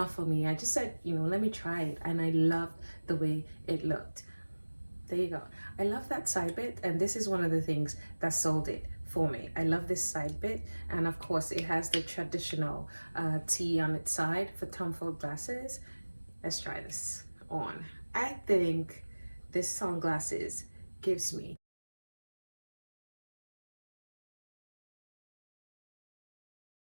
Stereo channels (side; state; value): both; inverted; correlation -1.00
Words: for me. I just said, you know, let me try it. And I loved the way it looked. There you go. I love that side bit. And this is one of the things that sold it for me. I love this side bit. And of course it has the traditional T on its side for Tom Ford glasses. Let's try this on. I think this sunglasses gives me